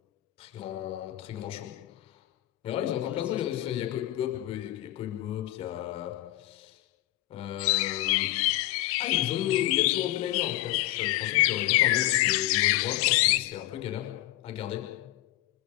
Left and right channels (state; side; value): quieter; right; 16.1 dB